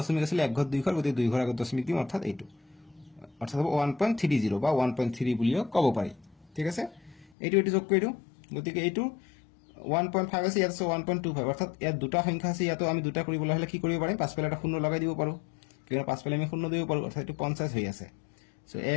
আছিল এক ঘৰ দুই ঘৰ গতি দুই ঘৰ আগত দশমিক দিম অৰ্থাৎ এইটো অৰ্থাৎ হ'ব 1.30 বা 1.3 বুলিও ক'ব পাৰি ঠিক আছে এইটো যোগ কৰি দিও গতিকে এইটো 1.5 আছে ইয়াত আছে 1.25 অৰ্থাৎ ইয়াত দুটা সংখ্যা আছে ইয়াতো আমি দুটা কৰিবলৈ হলে কি কৰিব পাৰিম পাছফালে এটা শূন্য লগাই দিব পাৰো কিয়নো পাছফালে আমি শূন্য দিব পাৰো অৰ্থাৎ এইটো 50 হৈ আছে সো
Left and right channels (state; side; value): drops out; right; at 7.2 s